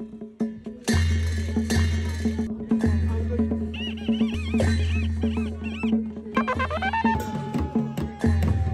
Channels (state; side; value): identical; both; correlation 1.00